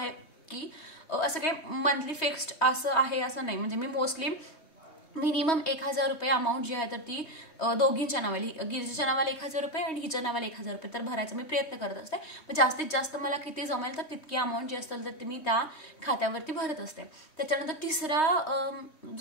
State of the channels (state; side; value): late; right; 3.2 ms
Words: की असं काही मंथली फिक्स्ड असं आहे असं नाही, म्हणजे मी मोस्टली मिनिमम 1,000 रुपये अमाऊंट जी आहे तर ती दोघींच्या नावाली, गिरिजाच्या नावाला 1,000 रुपये आणि हिच्या नावाला 1,000 रुपये तर भरायचा मी प्रयत्न करत असते. मग जास्तीत जास्त मला किती जमेल तर तितकी अमाऊंट जी असेल तर ती मी त्या खात्यावरती भरत असते. त्याच्यानंतर तिसरा